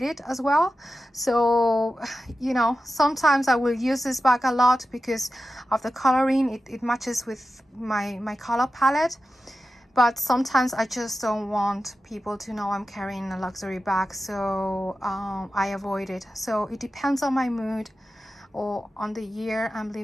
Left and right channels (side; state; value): both; normal; correlation 0.93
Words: it as well. So, you know, sometimes I will use this bag a lot because of the coloring. It matches with my color palette. But sometimes I just don't want people to know I'm carrying a luxury bag, so I avoid it. So it depends on my mood or on the year I'm